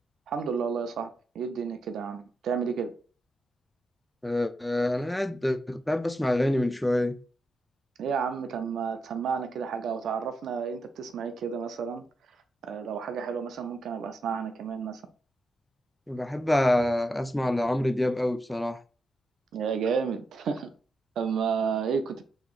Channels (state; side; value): normal; both; correlation 0.84